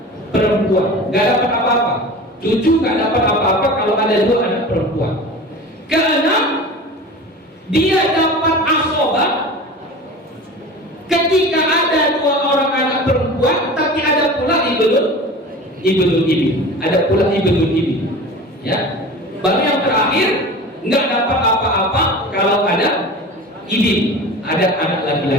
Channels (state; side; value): normal; both; correlation 0.36